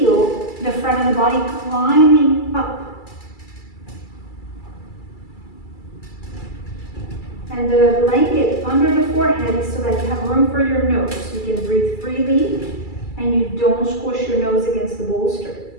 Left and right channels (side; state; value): right; late; 2.3 ms